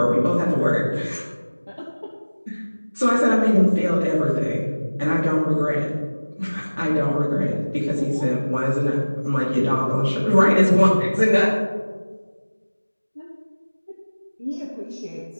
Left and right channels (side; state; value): both; inverted; correlation -1.00